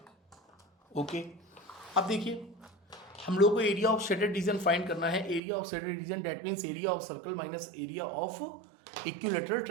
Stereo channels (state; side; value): drops out; left; at 5.4 s